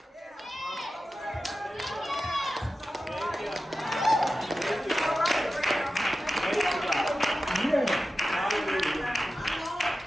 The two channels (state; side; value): normal; both; correlation 0.93